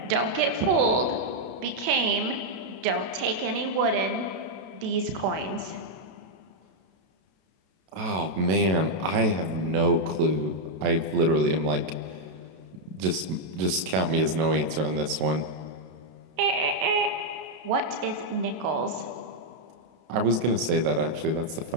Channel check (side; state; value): left; late; 32 ms